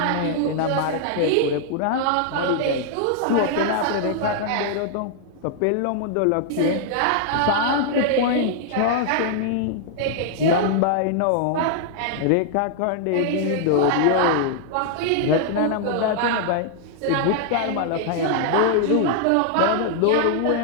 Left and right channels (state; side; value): different; both; correlation -0.01